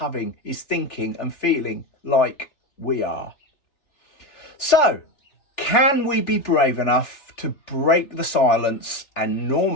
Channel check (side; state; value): right; late; 3.4 ms